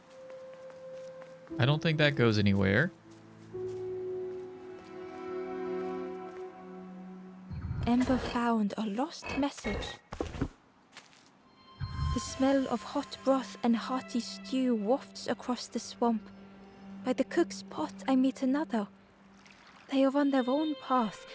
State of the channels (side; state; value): both; identical; correlation 1.00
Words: I don't think that goes anywhere. Ember found a lost message. The smell of hot broth and hearty stew wafts across the swamp. By the cook's pot I meet another. They are on their own path,